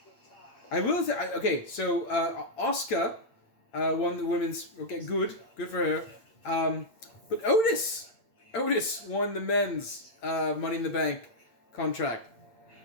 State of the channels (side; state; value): right; late; 8.8 ms